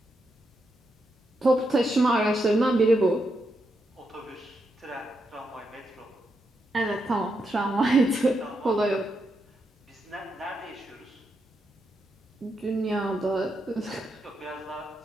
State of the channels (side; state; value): both; normal; correlation 0.83